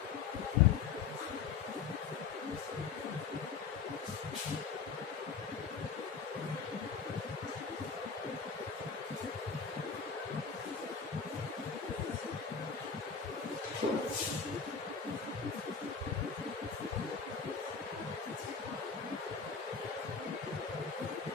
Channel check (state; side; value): quieter; right; 5.9 dB